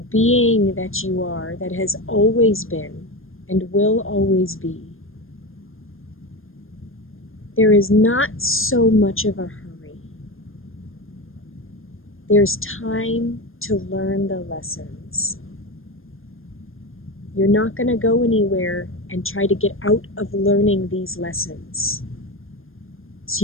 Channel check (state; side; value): late; right; 0.60 ms